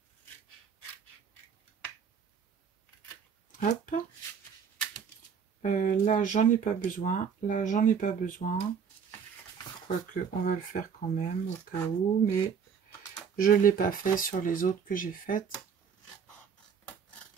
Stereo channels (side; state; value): left; quieter; 6.9 dB